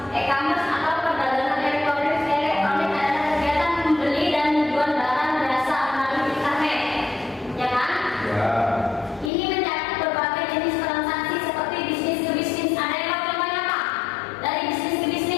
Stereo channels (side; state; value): right; drops out; at 9.3 s